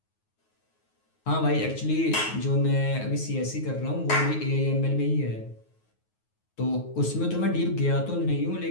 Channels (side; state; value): right; late; 9.4 ms